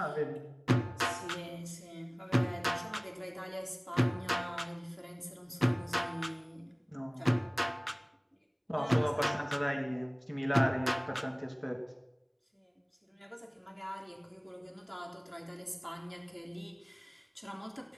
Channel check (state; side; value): identical; both; correlation 1.00